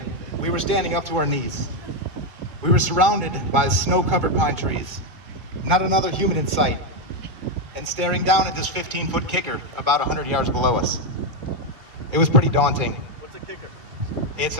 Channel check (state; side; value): late; left; 2.1 ms